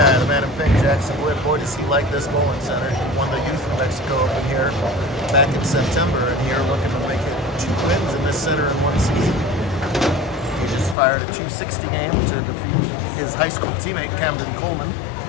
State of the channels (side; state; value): right; drops out; at 11.0 s